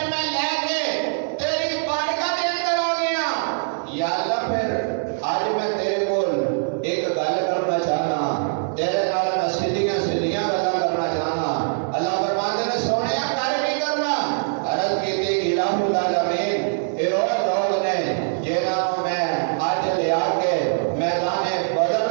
میں لے کے تیری بارگاہ دے اندر ہو گیا، یا اللہ پھر آج میں تیرے کول ایک گل کرنا چاہنا، تیرے نال میں سیدھیاں سیدھیاں گلاں کرنا چاہنا، اللہ فرماتے نے سونیا کر نہیں کرنا، عرض کی تھی الہ العالمین اے وہ لوگ نے جنہوں میں آج لے آ کے میدان بدر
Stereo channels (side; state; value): left; silent; 62 dB below the other